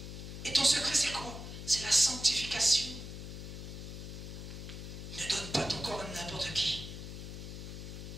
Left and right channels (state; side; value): noise; left; hum, 9 dB below the sound